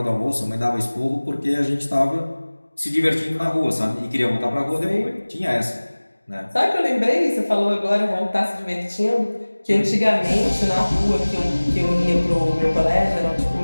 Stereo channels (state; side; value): inverted; both; correlation -1.00